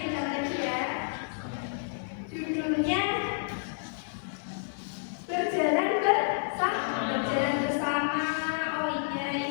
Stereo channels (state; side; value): silent; right; digital silence